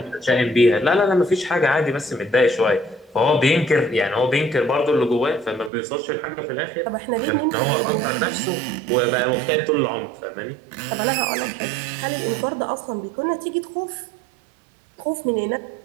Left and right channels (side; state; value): left; drops out; at 5.7 s